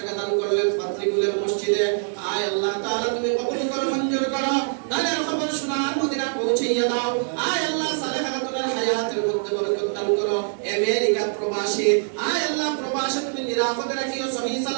দান করলেন পাত্রীগুলের মসজিদে। আয় আল্লাহ তাআলা তুমি কবুল করো, মঞ্জুর করো, দানের খবর শোনার মদিনা পৌঁছাইয়া দাও। আয় আল্লাহ সালেহা খাতুনের হায়াতের মধ্যে বরকত দান করো। আমেরিকা প্রবাসী আয় আল্লাহ প্রবাসে তুমি নিরাপদে রাখিও, সহিহ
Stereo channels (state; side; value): silent; left; digital silence